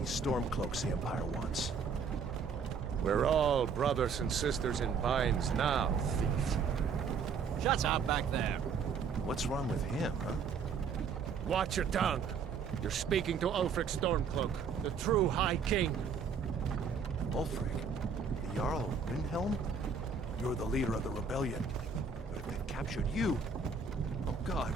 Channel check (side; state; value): left; quieter; 5.6 dB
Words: Stormcloaks the Empire wants. We're all brothers and sisters in binds now, thief. Shut up back there. What's wrong with him, huh? Watch your tongue. You're speaking to Ulfric Stormcloak, the true High King. Ulfric? The Jarl of Windhelm? You're the leader of the rebellion. But if they've captured you... Oh God,